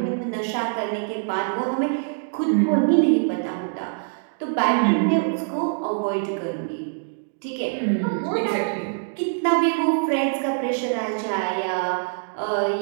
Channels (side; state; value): left; silent; digital silence